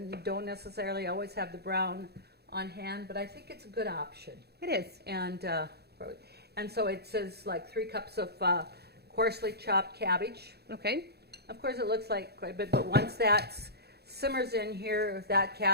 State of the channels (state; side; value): late; left; 0.47 ms